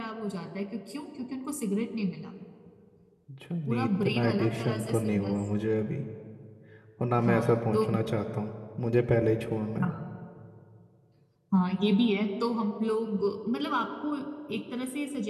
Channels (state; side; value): identical; both; correlation 1.00